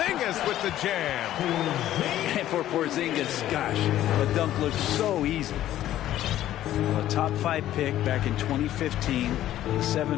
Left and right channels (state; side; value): quieter; right; 13.0 dB